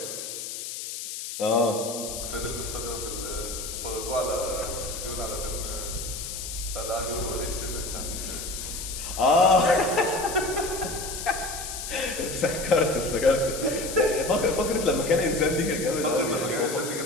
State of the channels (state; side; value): noise; left; hiss, 7 dB below the sound